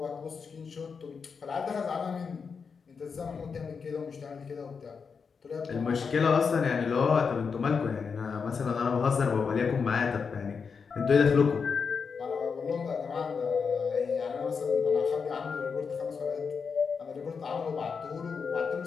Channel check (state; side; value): quieter; right; 5.7 dB